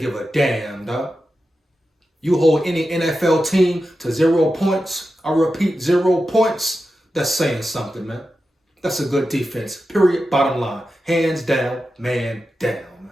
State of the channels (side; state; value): both; normal; correlation 0.91